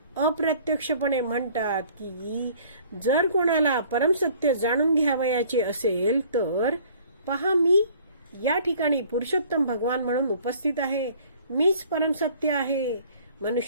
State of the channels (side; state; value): both; inverted; correlation -0.54